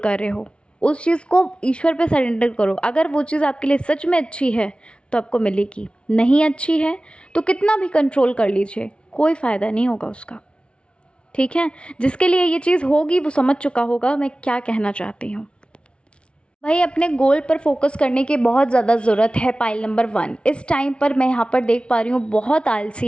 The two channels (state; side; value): late; right; 0.058 ms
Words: रहे हो, उस चीज़ को ईश्वर पे सरेंडर करो। अगर वो चीज़ आपके लिए सच में अच्छी है तो आपको मिलेगी, नहीं अच्छी है तो कितना भी कंट्रोल कर लीजिए, कोई फ़ायदा नहीं होगा उसका। ठीक है, जिसके लिए ये चीज़ होगी वो समझ चुका होगा मैं क्या कहना चाहती हूँ। भाई अपने गोल पर फोकस करने की बहुत ज़्यादा ज़रूरत है। पाइल नंबर 1, इस टाइम पर मैं यहाँ पर देख पा रही हूँ बहुत